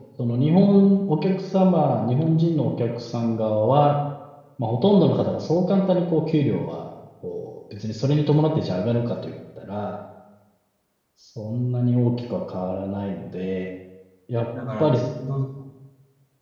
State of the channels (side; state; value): both; identical; correlation 1.00